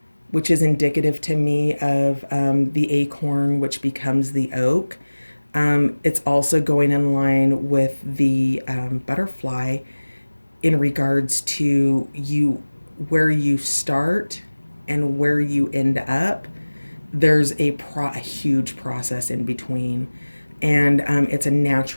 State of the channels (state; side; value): inverted; both; correlation -1.00